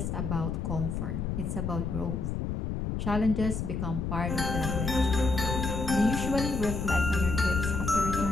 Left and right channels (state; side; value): noise; left; rumble, 2 dB below the sound